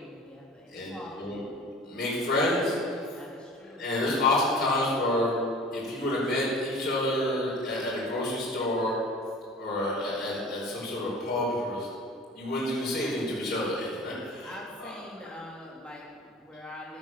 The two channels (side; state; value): both; normal; correlation 0.42